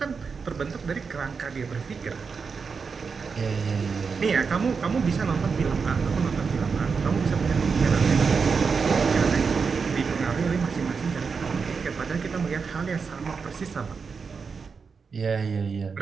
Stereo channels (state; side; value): quieter; left; 5.4 dB